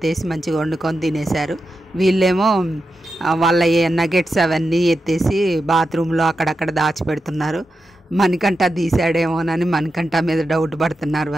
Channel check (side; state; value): both; normal; correlation 0.89